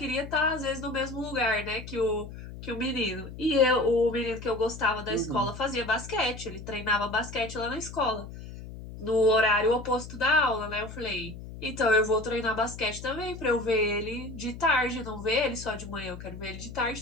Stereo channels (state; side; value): noise; left; hum, 12 dB below the sound